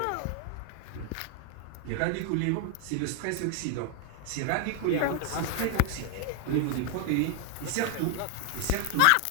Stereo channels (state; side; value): different; both; correlation 0.00